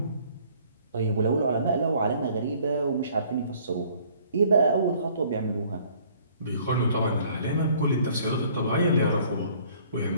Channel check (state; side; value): inverted; both; correlation -0.58